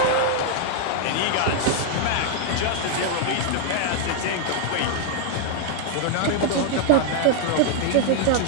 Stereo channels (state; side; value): different; both; correlation 0.00